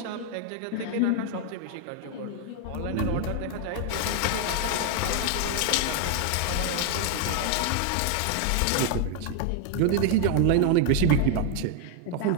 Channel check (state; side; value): different; both; correlation 0.00